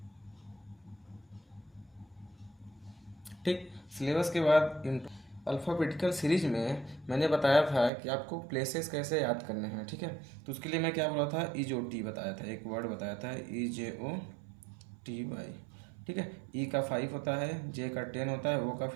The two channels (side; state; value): left; drops out; at 7.9 s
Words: ठीक, सिलेबस के बाद अल्फ़ाबेटिकल सीरीज में मैंने बताया था कि आपको प्लेसेस कैसे याद करने हैं। ठीक है, तो उसके लिए मैं क्या बोला था, EJOT बताया था, एक वर्ड बताया था EJOTY। ठीक है, E का 5 होता है, J का 10 होता है, O का